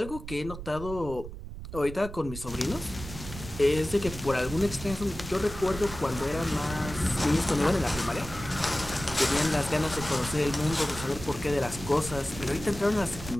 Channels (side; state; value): right; noise; rumble, 11 dB below the sound